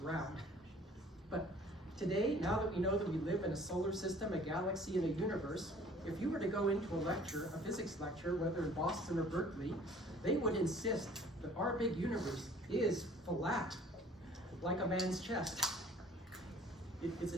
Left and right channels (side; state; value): both; normal; correlation 0.52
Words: But Today, now that we know that we live in a solar system, a galaxy, and a universe, if you were to go into a lecture, a physics lecture, whether in Boston or Berkeley, they would insist that our big universe is flat, like a man's chest. It's